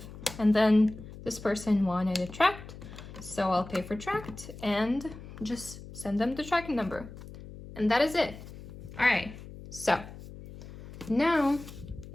and then this person wanted it tracked, so I'll pay for tracked and just send them the tracking number. And that is it. All right, so now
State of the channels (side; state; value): left; noise; hum, 15 dB below the sound